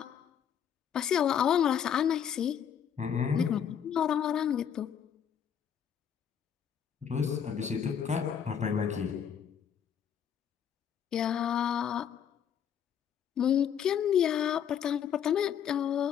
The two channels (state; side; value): quieter; right; 8.5 dB